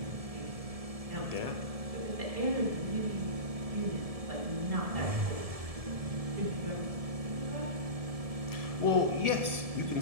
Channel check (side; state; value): left; late; 1.7 ms